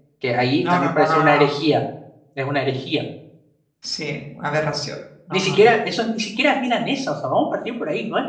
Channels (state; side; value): identical; both; correlation 1.00